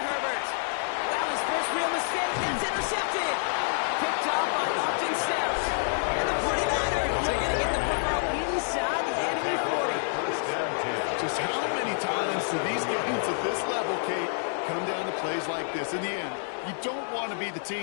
That was first real mistake. That's intercepted. Picked off by Austin Steps. And the 49ers are going to get the football inside the enemy 40. Just how many times do these games at this level, Kate, come down to plays like this? In the end, you don't want to be the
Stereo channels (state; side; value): silent; right; digital silence